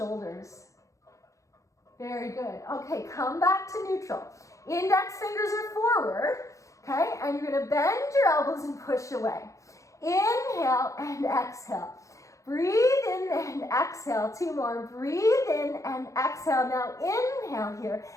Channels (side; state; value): right; late; 0.15 ms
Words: Very good. Okay, come back to neutral. Index fingers are forward. Okay, and you're gonna bend your elbows and push away. Inhale and exhale. Breathe in and exhale. 2 more. Breathe in and exhale. Now inhale here.